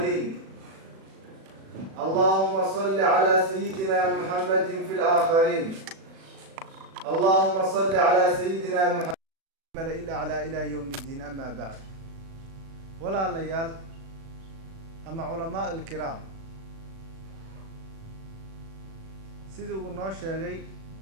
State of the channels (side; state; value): left; late; 36 ms